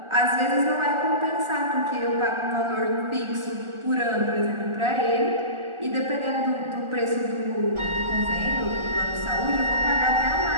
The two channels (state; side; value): late; left; 1.4 ms